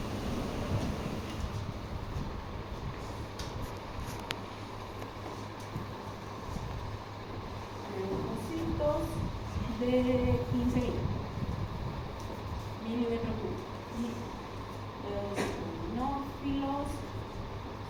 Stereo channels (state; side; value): identical; both; correlation 1.00